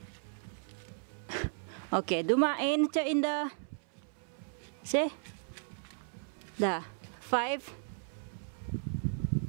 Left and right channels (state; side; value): silent; left; 54 dB below the other